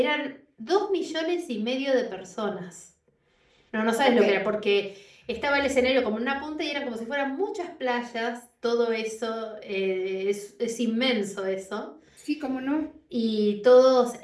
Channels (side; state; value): both; identical; correlation 1.00